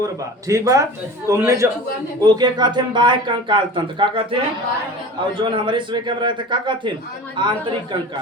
बा ठीक बा। तुमने जो ओके कहते हैं बाह्य कंकाल तंत्र का कहते हैं और जो हमारे सुबह के रहते का कहते हैं आंतरिक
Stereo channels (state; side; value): normal; both; correlation 0.37